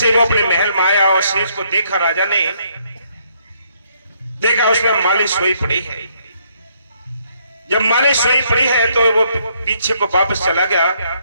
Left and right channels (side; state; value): both; inverted; correlation -0.70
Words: वो अपने महल में आया और सेज को देखा, राजा ने देखा उसमें माली सोई पड़ी है। जब माली सोई पड़ी है तो वो पीछे को वापस चला गया